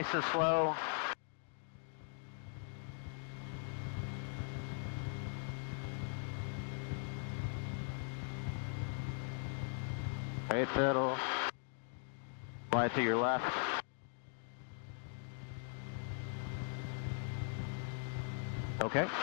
and slow. Right pedal, slide to your left. Okay.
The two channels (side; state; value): right; silent; 51 dB below the other